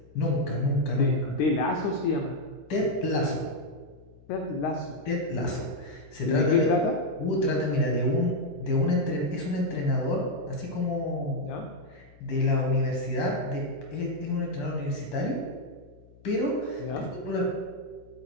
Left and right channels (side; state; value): left; noise; hum, 25 dB below the sound